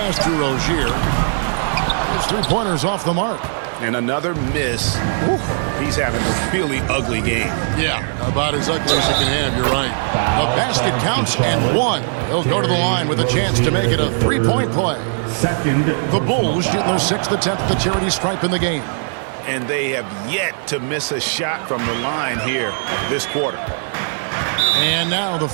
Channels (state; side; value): silent; left; digital silence